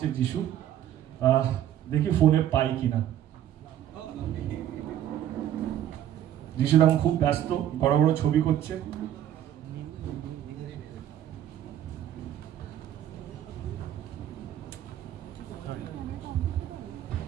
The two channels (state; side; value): quieter; left; 11.4 dB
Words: যিশু। দেখি ফোনে পাই কিনা। যিশু এখন খুব ব্যস্ত, বড় বড় ছবি করছে।